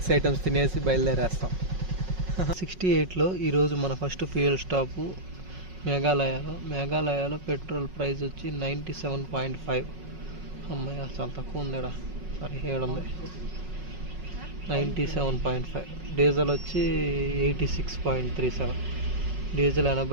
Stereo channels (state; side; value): late; left; 5.4 ms